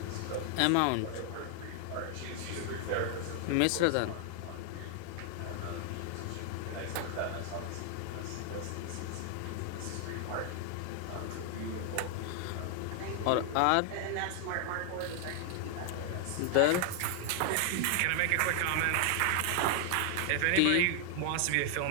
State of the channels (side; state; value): both; different; correlation 0.00